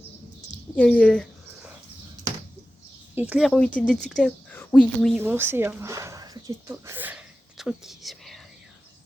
Il y a les éclairs ont été détectés. Oui, on sait. Hein. T'inquiète pas. Le truc qui se met.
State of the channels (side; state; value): both; normal; correlation 0.94